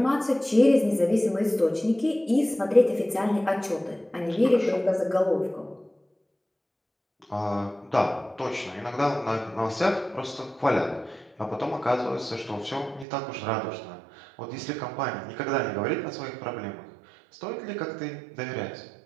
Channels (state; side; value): drops out; left; at 13.1 s